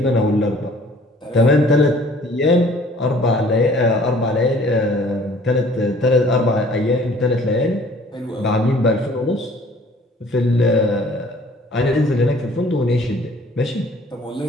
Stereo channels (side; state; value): both; normal; correlation 0.54